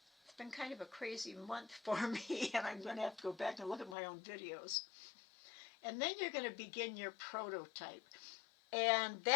It's been kind of a crazy month for me, and I'm going to have to go back and look at my own videos. And then you're going to begin your prototype. And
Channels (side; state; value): right; drops out; at 4.0 s